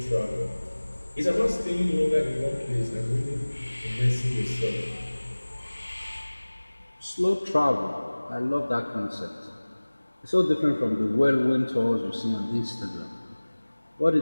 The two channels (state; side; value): inverted; both; correlation -1.00